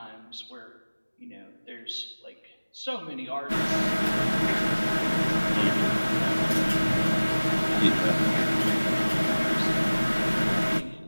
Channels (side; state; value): both; inverted; correlation -1.00